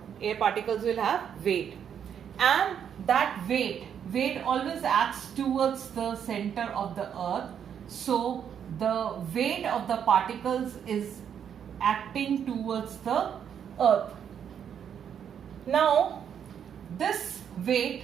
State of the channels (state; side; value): quieter; left; 8.4 dB